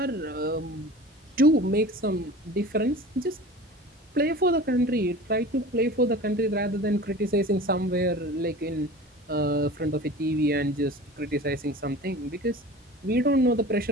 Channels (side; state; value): both; normal; correlation 0.38